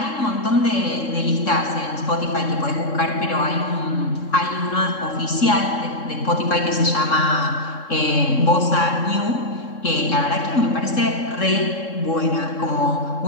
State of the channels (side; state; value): right; late; 3.7 ms